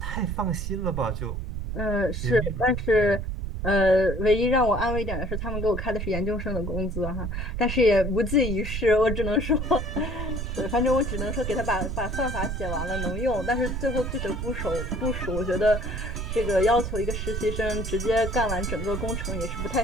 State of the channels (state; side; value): noise; right; rumble, 4 dB below the sound